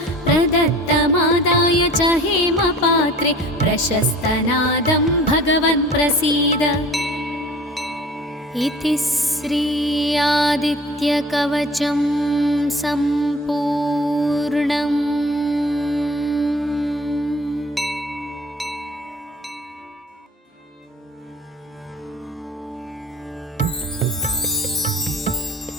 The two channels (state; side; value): normal; both; correlation 0.45